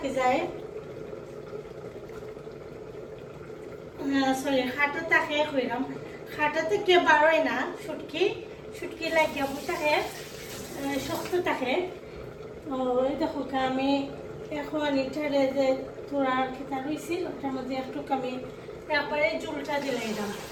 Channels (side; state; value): both; identical; correlation 1.00